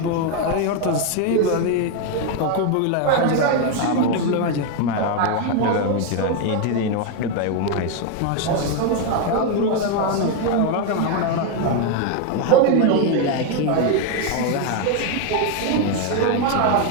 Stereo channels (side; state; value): both; different; correlation 0.01